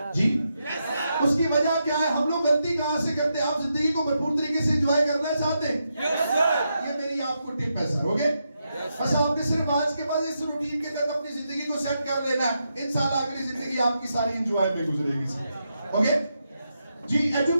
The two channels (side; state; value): both; inverted; correlation -0.84